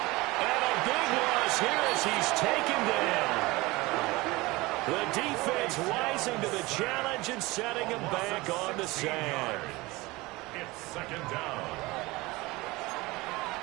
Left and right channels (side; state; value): left; quieter; 21.7 dB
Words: And a big loss here as he's taken down. The defense rising to the challenge and setting him back on the sand. It's 2nd down.